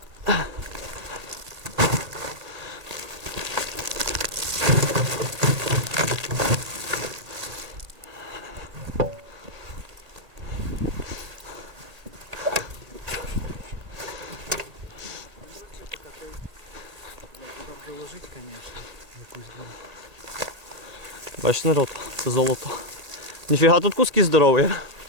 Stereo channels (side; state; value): left; late; 1.8 ms